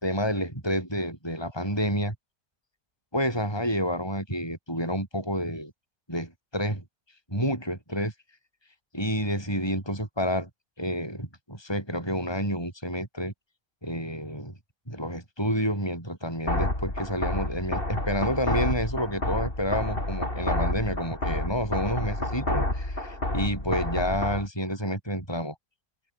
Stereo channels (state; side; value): late; right; 1.2 ms